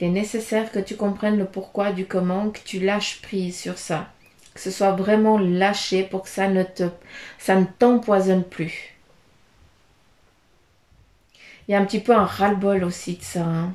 est nécessaire que tu comprennes le pourquoi du comment, que tu lâches prise sur ça, que ce soit vraiment lâché pour que ça ne t'empoisonne plus. Il y a un petit peu un ras-le-bol aussi de ça. Hein.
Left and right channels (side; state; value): both; identical; correlation 1.00